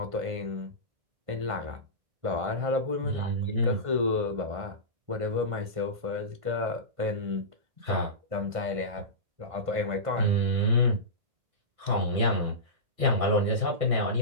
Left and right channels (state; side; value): late; left; 1.5 ms